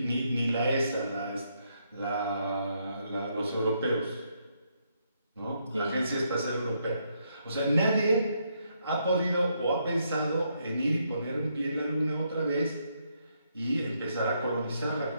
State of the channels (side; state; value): both; inverted; correlation -0.76